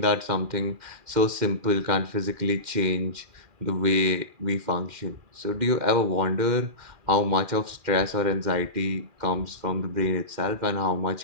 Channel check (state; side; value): late; left; 2.4 ms